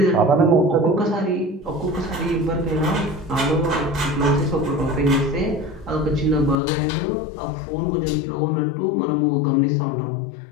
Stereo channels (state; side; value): drops out; right; at 6.6 s